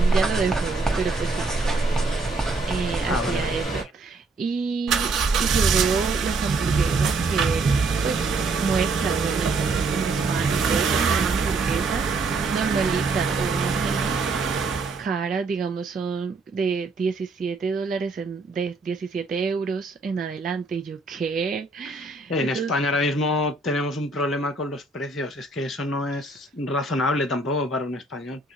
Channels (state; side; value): quieter; left; 3.4 dB